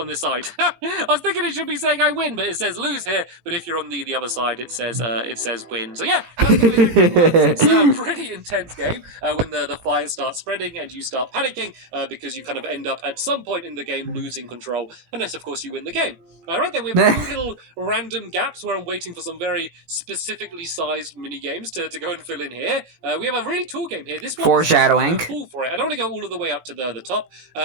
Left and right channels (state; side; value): late; left; 18 ms